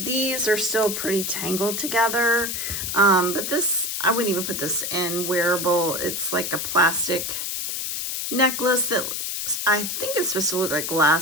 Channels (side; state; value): left; noise; hiss, 3 dB below the sound